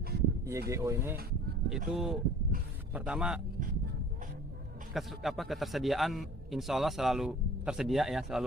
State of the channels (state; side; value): normal; both; correlation 0.47